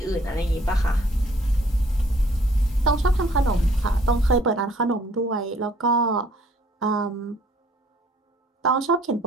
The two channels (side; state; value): both; normal; correlation 0.60